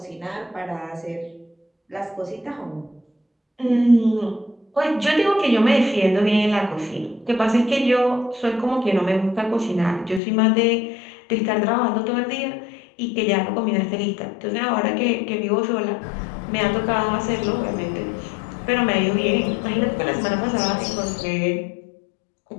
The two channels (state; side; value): drops out; right; at 10.2 s